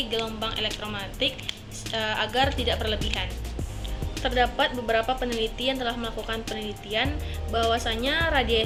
gelombang elektromagnetik agar tidak berlebihan. Terdapat beberapa peneliti yang telah melakukan penelitian bahwasanya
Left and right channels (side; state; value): both; identical; correlation 1.00